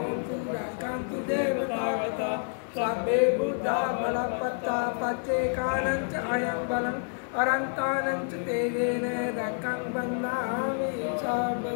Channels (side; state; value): right; silent; 59 dB below the other